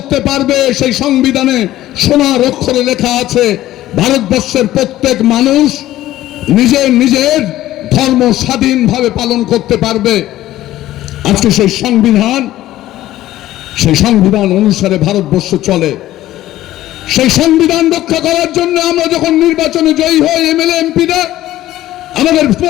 পারবে। সেই সংবিধানে সোনার অক্ষরে লেখা আছে, ভারতবর্ষের প্রত্যেক মানুষ নিজের নিজের ধর্ম স্বাধীনভাবে পালন করতে পারবে। আজকে সেই সংবিধান অনুসারে ভারতবর্ষ চলে। সেই সংবিধান রক্ষা করার জন্য আমরা যখন নির্বাচনে জয়ী হই, এমএলএ এমপিরা, আমাদের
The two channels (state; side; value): quieter; right; 14.6 dB